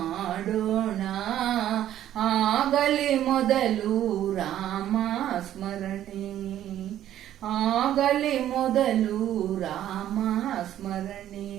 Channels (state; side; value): quieter; left; 11.9 dB